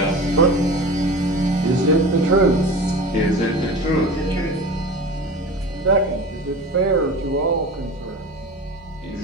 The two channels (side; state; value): both; normal; correlation 0.33